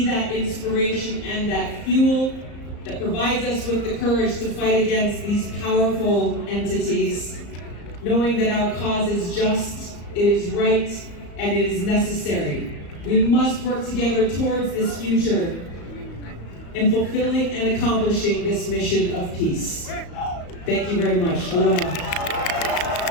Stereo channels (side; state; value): right; late; 34 ms